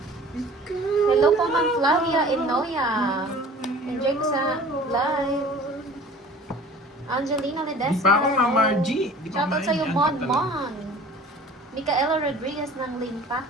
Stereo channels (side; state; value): both; normal; correlation 0.46